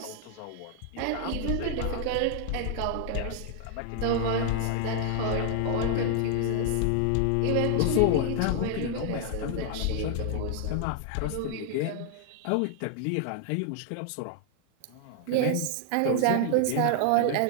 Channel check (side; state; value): both; different; correlation 0.00